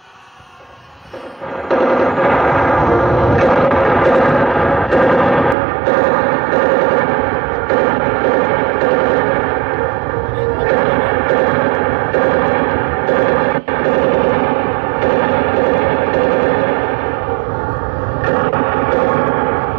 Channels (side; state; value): left; drops out; at 5.6 s